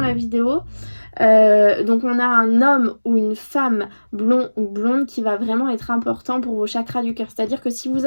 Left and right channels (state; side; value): inverted; both; correlation -1.00